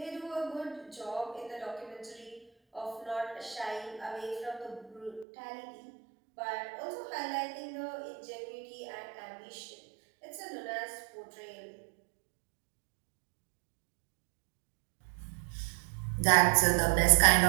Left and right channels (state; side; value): drops out; left; at 5.2 s